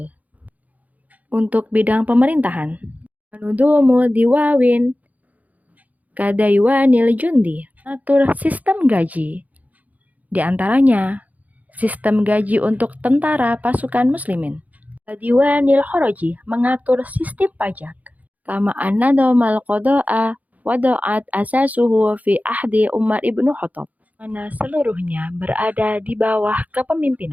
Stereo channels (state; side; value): late; left; 0.076 ms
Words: untuk bidang pemerintahan. Menudumu diwawin kadaiwanil jundi, atur sistem gaji. Di antaranya sistem gaji untuk tentara pasukan muslimin. Diwanil khoroji, mengatur sistem pajak. Kama an-nadomal qada'a wada'at asasuhu fi ahdi Umar ibnu Khattab, mana seluruhnya berada di bawah